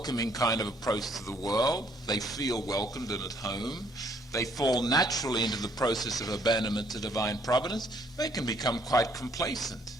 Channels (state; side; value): normal; both; correlation 0.65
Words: kind of approach to the world. They feel welcomed and at home. They fall naturally into the process of abandonment to divine providence. They can become quite complacent,